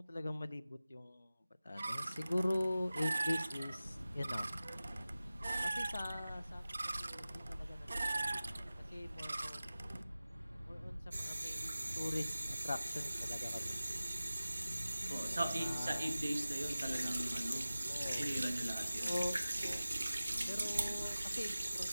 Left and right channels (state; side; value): inverted; both; correlation -0.96